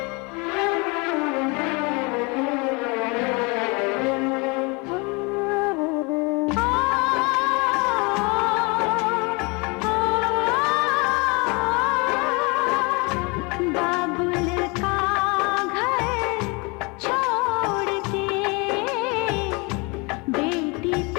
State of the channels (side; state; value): right; quieter; 28.9 dB